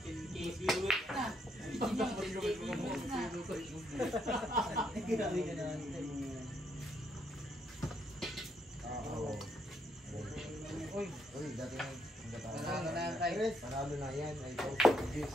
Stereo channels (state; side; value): normal; both; correlation 0.74